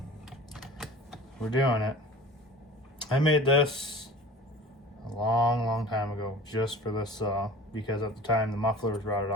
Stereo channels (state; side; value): normal; both; correlation 0.40